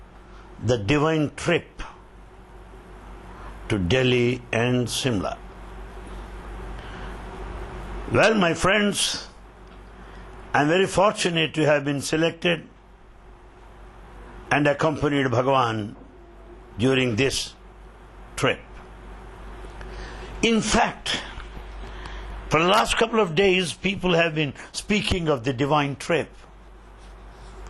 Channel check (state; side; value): identical; both; correlation 1.00